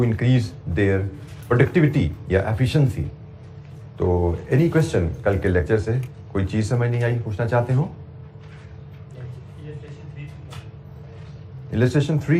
increase their productivity या एफिशिएंसी। तो एनी क्वेश्चन कल के लेक्चर से, कोई चीज़ समझ नहीं आई, पूछना चाहते हो? इलस्ट्रेशन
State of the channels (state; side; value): identical; both; correlation 1.00